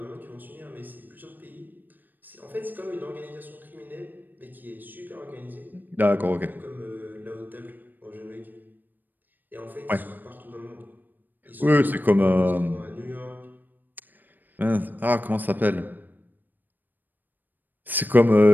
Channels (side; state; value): left; late; 0.089 ms